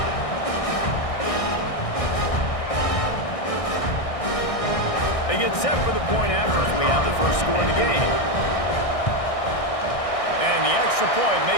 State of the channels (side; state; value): right; late; 1.6 ms